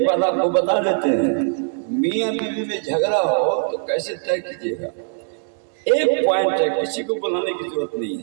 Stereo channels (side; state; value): left; silent; 65 dB below the other